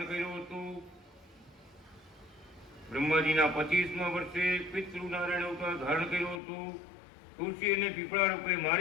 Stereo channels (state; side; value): drops out; right; at 6.4 s